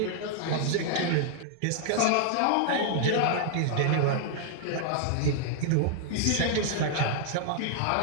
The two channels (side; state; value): both; different; correlation 0.00